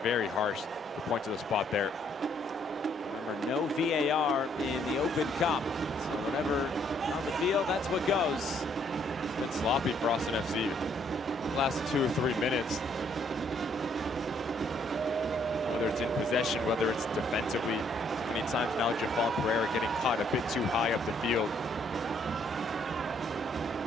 very harsh to point to the spot there. Remember, no VAR in the Open Cup. So whatever on the field, that's what goes. It's been sloppy for Austin FC the last 2 or 3 minutes. Whether it's in possession, whether it's defensively. Many times now Jafal Pereira getting caught a bit too high up the field.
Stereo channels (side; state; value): both; normal; correlation 0.67